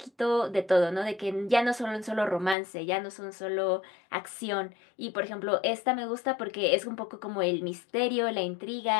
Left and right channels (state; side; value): drops out; right; at 2.6 s